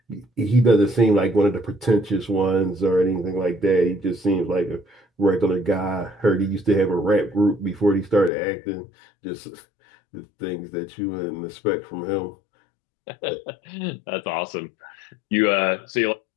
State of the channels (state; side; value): drops out; right; at 8.3 s